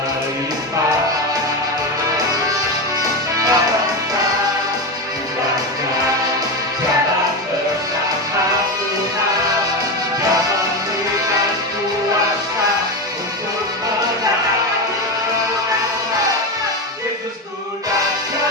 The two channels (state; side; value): normal; both; correlation 0.16